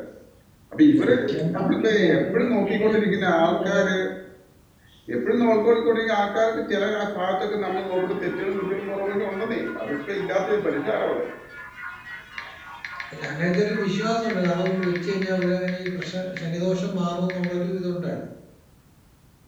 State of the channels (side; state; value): both; identical; correlation 1.00